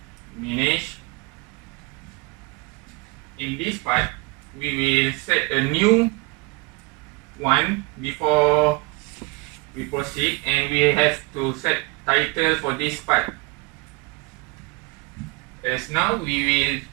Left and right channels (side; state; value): left; quieter; 26.5 dB